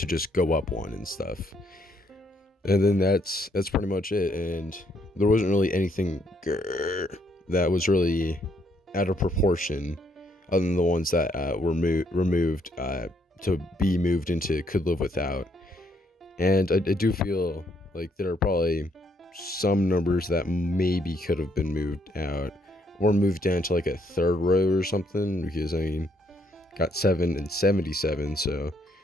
just go up 1 and stuff. And then that's pretty much it. And there wasn't really anything that was really out of proportion other than the ones that were removed to be moved into could live without. And I do feel like there are probably some numbers that maybe could have been moved out or moved down to like a 3rd row or something, because I mean, got 7 and 77, so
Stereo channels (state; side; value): normal; both; correlation 0.71